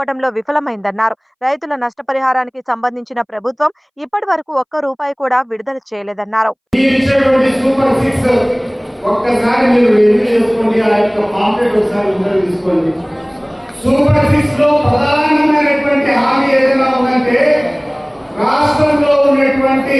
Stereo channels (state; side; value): identical; both; correlation 1.00